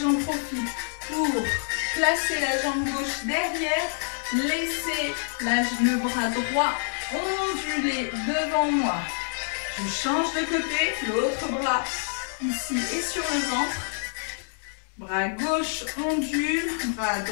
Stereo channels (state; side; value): silent; right; digital silence